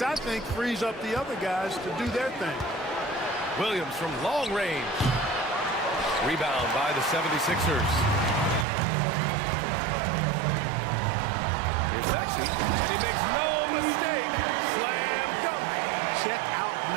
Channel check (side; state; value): left; drops out; at 8.7 s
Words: I think frees up the other guys to do their thing. Williams from long range. Rebound by the 76ers. Here's Maxey, and he makes no mistake. Slam dunk. Check out